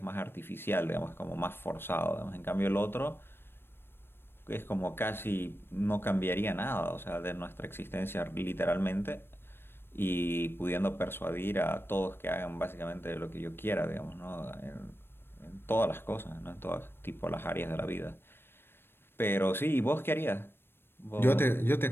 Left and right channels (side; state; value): right; late; 0.11 ms